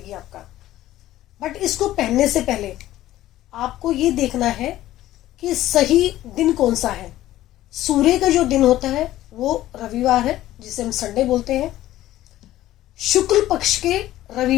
आपका। बट इसको पहनने से पहले आपको ये देखना है कि सही दिन कौन सा है। सूर्य का जो दिन होता है वो रविवार है, जिसे हम संडे बोलते हैं। शुक्ल पक्ष के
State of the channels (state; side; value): quieter; right; 14.5 dB